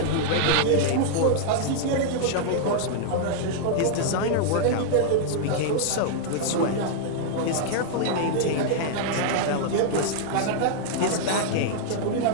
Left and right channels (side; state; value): both; different; correlation -0.01